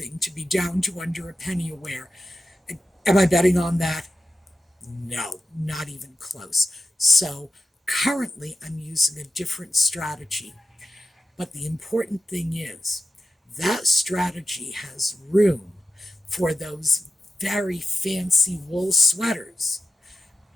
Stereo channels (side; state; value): both; normal; correlation 0.92